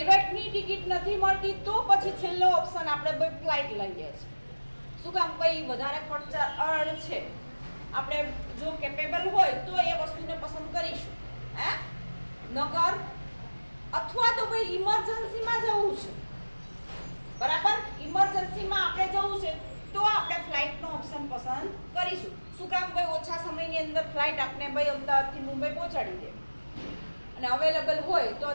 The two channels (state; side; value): inverted; both; correlation -1.00